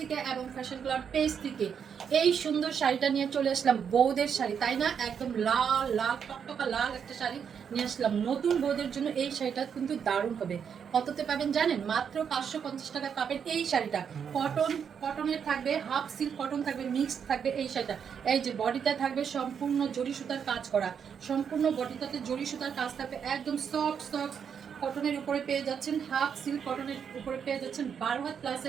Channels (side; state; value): left; quieter; 7.3 dB